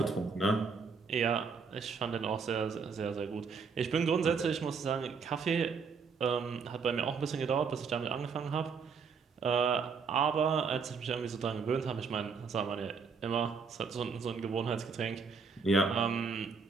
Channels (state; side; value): quieter; left; 5.4 dB